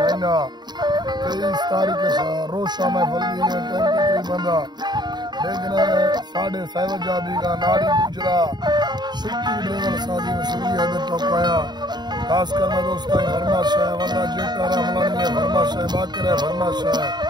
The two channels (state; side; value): late; left; 0.21 ms